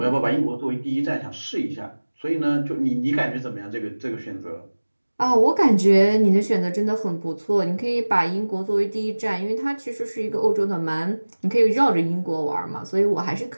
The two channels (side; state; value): both; inverted; correlation -1.00